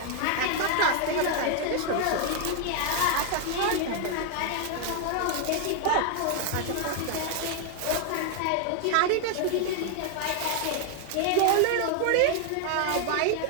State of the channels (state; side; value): different; both; correlation 0.00